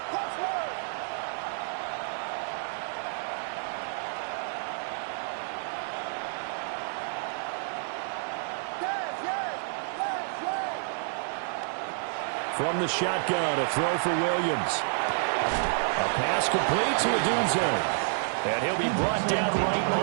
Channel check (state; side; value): silent; left; digital silence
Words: From the shotgun, a throw for Williams. A pass complete to Odunze. And he'll be brought down right